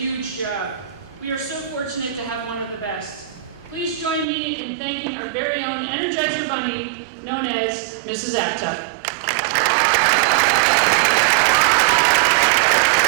job. We are so fortunate to have one of the best. Please join me in thanking our very own Energizer Bunny, known as Mrs. Aptuck.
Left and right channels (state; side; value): drops out; left; at 4.2 s